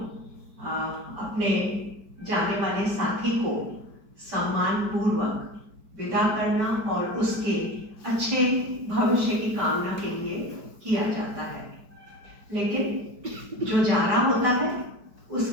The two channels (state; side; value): late; left; 4.9 ms